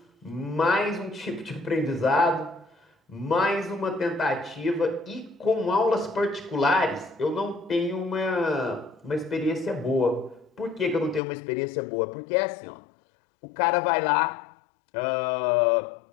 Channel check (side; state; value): right; drops out; at 11.2 s